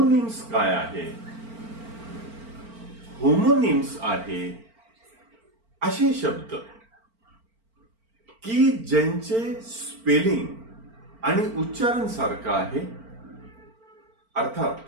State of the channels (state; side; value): late; left; 4.4 ms